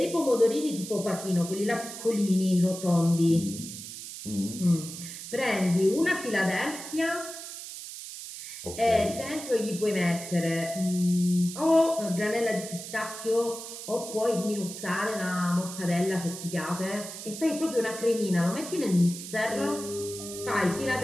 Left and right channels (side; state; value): right; noise; hiss, 10 dB below the sound